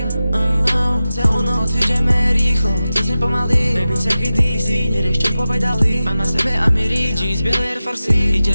Celú noc ideme rýchlo, cez ne pomaly. Baby, take it easy, nerieš čo povedali. Mám na sebe Amiri, jeans, biele Air Force.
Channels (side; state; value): both; inverted; correlation -0.94